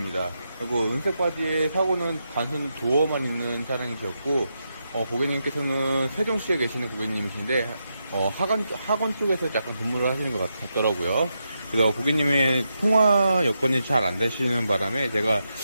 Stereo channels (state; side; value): inverted; both; correlation -0.85